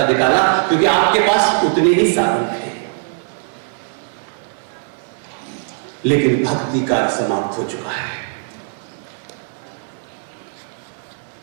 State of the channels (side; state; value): left; silent; 66 dB below the other